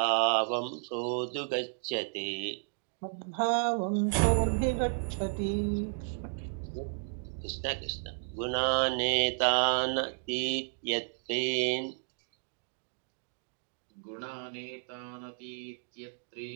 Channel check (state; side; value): silent; left; digital silence